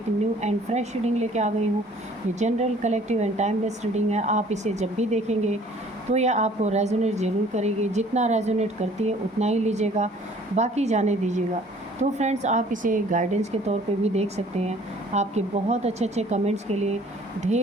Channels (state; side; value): normal; both; correlation 0.54